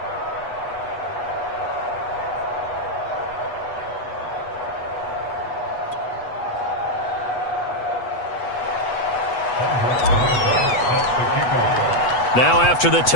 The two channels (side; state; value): right; late; 8.1 ms